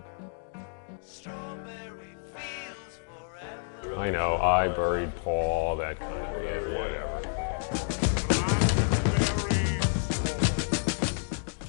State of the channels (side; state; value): right; silent; digital silence